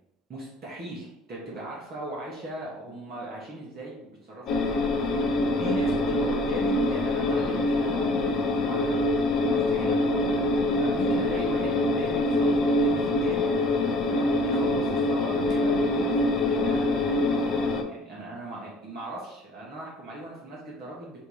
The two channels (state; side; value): normal; both; correlation 0.52